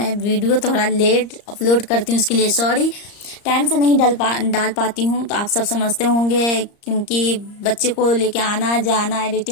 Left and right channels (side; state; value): right; late; 34 ms